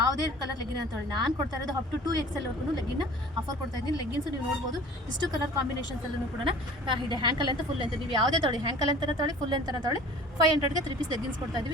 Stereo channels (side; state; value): both; normal; correlation 0.45